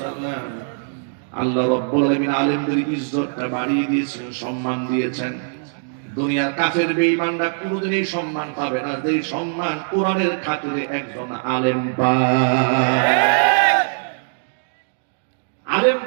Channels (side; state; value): left; silent; digital silence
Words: আল্লাহ রাব্বুল আলামিন আলেমদের ইজ্জতটা বাড়িয়ে দিয়েছেন, সম্মান দিয়েছেন। দুনিয়ার কাফের বেঈমানরা কোনোদিন এই সম্মান পাবে না যে সম্মান কোরআনের খাতিরে একজন আলেম পায়।